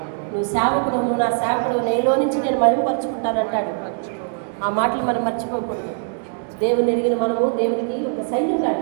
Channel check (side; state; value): left; silent; digital silence